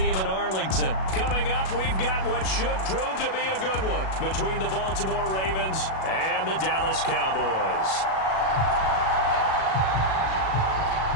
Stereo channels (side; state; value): right; late; 37 ms